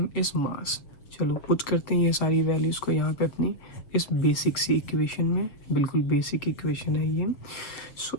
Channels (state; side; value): late; right; 6.8 ms